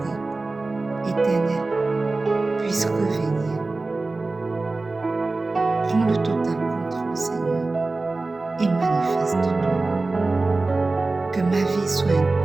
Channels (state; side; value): quieter; left; 3.4 dB